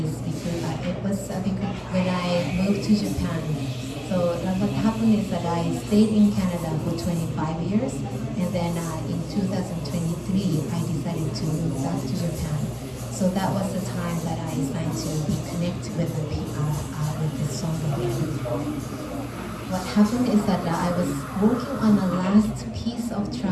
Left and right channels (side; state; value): both; identical; correlation 1.00